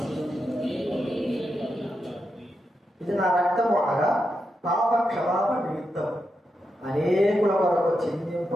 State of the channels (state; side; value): normal; both; correlation 0.86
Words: ఇది నా రక్తము అనగా పాప క్షమాపణ నిమిత్తం అనేకుల వరకు